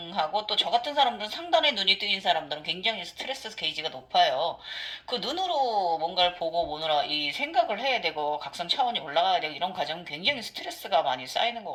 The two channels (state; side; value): identical; both; correlation 1.00